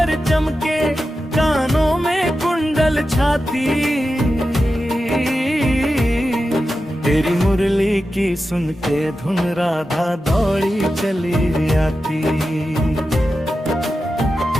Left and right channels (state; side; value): normal; both; correlation 0.91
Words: चमके कानों में कुंडल छाती। तेरी मुरली की सुन के धुन राधा दौड़ी चली आती।